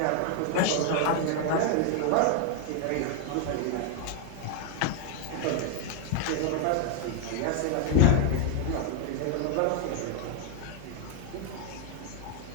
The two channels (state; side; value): different; both; correlation 0.00